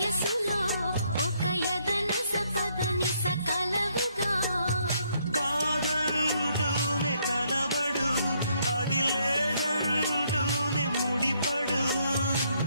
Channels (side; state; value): both; inverted; correlation -0.71